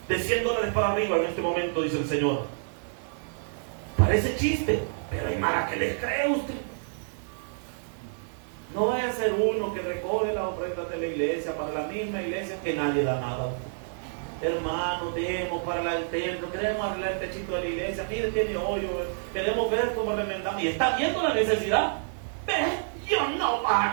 de $100 para arriba. En este momento, dice el Señor. Parece chiste, pero hay mara que les cree usted. No vaya a ser uno que recoge las ofrendas de la iglesia para la misma iglesia que nadie da nada. Hermano, demos para el templo, queremos arreglar el techito de la iglesia, mire, tiene hoyo, queremos ver cómo remendamos. Y está viendo la necesidad. Yo no va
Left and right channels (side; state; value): left; silent; 59 dB below the other